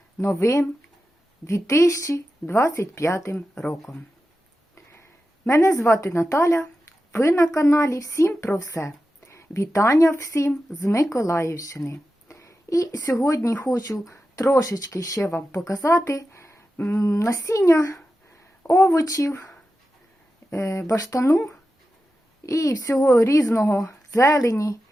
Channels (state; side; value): normal; both; correlation 0.91